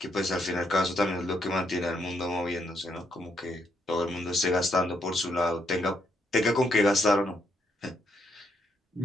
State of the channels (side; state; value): both; normal; correlation 0.76